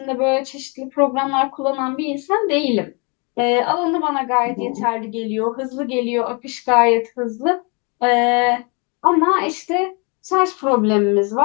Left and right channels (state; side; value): quieter; right; 33.0 dB